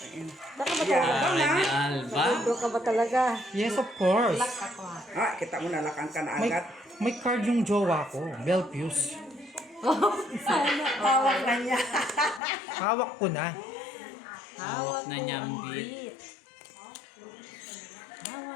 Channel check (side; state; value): right; drops out; at 12.4 s